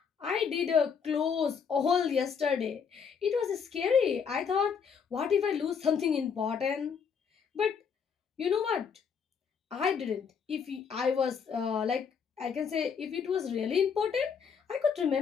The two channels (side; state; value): right; quieter; 6.5 dB